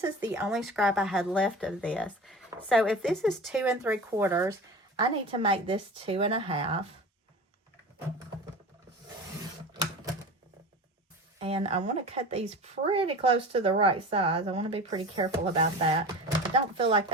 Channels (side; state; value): both; normal; correlation 0.34